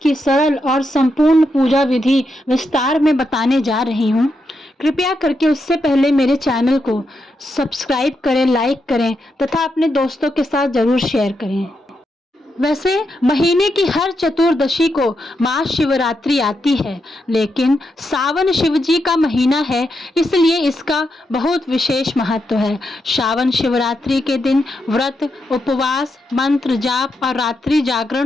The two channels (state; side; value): normal; both; correlation 0.84